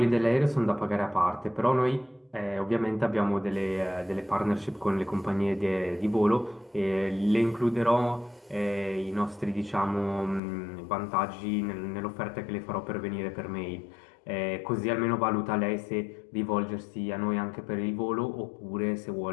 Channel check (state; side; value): drops out; right; at 10.4 s